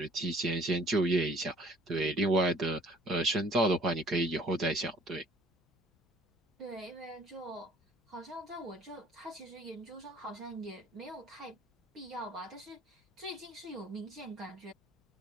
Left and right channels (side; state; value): both; normal; correlation 0.55